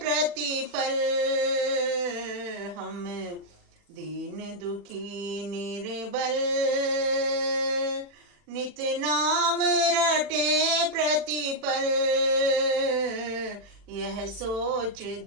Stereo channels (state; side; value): late; left; 40 ms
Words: हम दीन दुखी निर्बल नित नाम रटे प्रतिपल, यह सोच